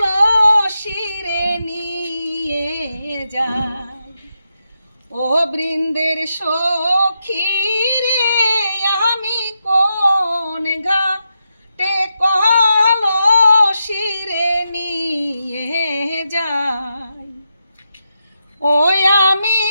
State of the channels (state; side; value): inverted; both; correlation -0.86